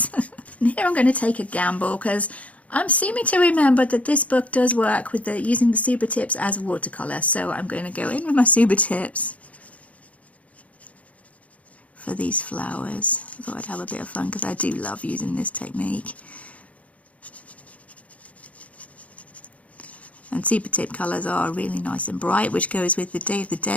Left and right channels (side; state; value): right; late; 0.067 ms